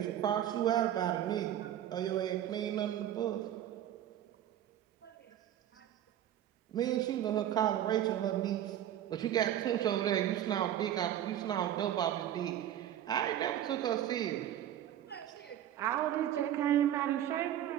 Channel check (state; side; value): quieter; left; 11.4 dB